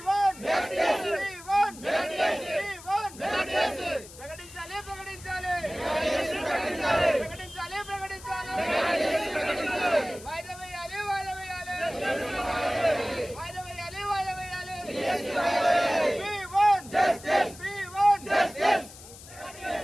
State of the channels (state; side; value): noise; left; hiss, 17 dB below the sound